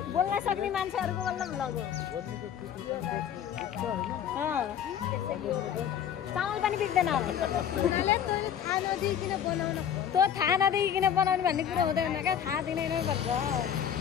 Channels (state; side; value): quieter; right; 9.1 dB